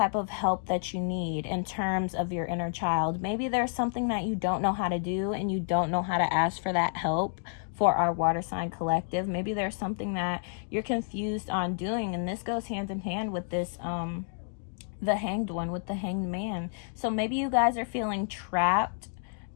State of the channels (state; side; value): silent; right; digital silence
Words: of help that you need in terms of your inner child. Maybe there's something that you don't know how to do and you don't know how to ask for that help. For our water sign collective, maybe there's something that you're confused on doing, and this goes hand in hand with this the Hanged One, with the Hanged Man. So maybe you guys are feeling trapped,